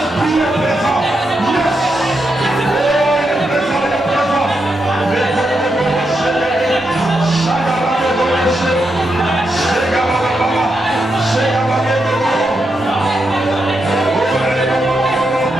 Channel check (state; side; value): normal; both; correlation 0.84